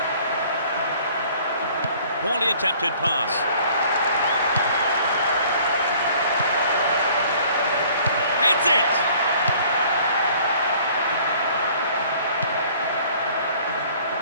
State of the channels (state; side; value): inverted; both; correlation -0.54